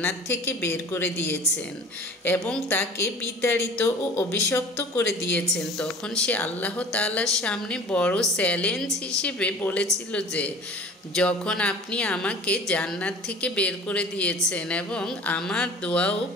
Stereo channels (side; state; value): both; normal; correlation 0.43